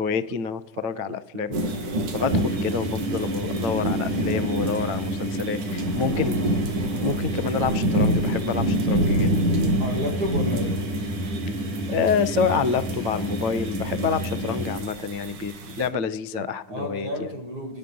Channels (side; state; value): left; late; 10 ms